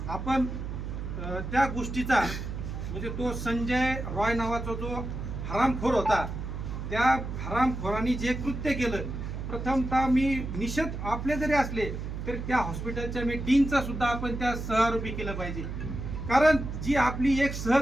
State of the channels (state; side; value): noise; right; hum, 6 dB below the sound